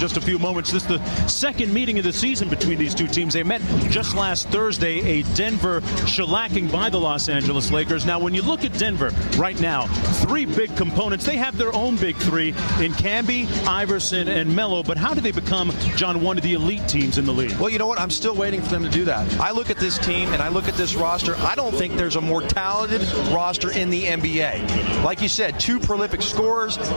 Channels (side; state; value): both; inverted; correlation -1.00